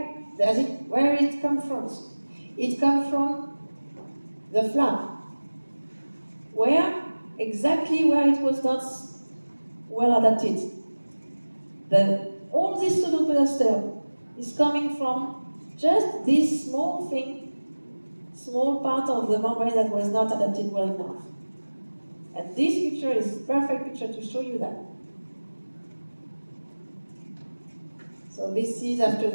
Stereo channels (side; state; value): both; inverted; correlation -1.00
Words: it comes from. It comes from the flap. Exactly where it was not well adapted. All this pseudoperistome is coming from just this small thing, small part of the membrane that was not adapted well enough. And this picture is a perfect picture to show you that. So this is, after